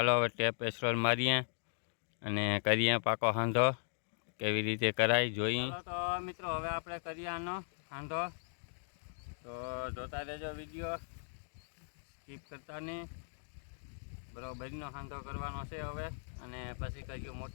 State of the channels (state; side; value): silent; right; digital silence